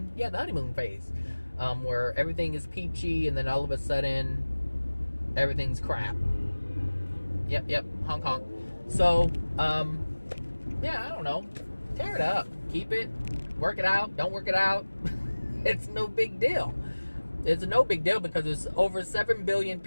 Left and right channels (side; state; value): both; inverted; correlation -1.00